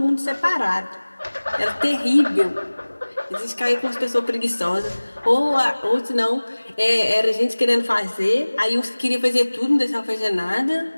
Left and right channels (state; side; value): inverted; both; correlation -1.00